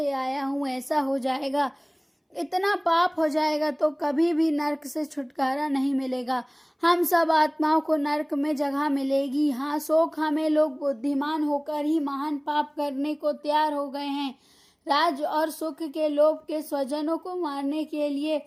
आया हूँ, ऐसा हो जाएगा, इतना पाप हो जाएगा तो कभी भी नरक से छुटकारा नहीं मिलेगा। हम सब आत्माओं को नरक में जगह मिलेगी। हाँ, शोक हमें, लोग बुद्धिमान होकर ही महान पाप करने को तैयार हो गए हैं। राज और सुख के लोभ के स्वजनों को मारने के लिए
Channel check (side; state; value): both; identical; correlation 1.00